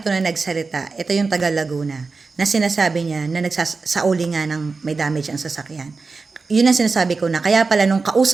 to na nagsalita, ito yung taga Laguna, na sinasabi niya na nagsasauli nga ng may damage ang sasakyan. Yun ang sinasabi ko na, kaya pala nung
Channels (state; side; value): quieter; left; 4.2 dB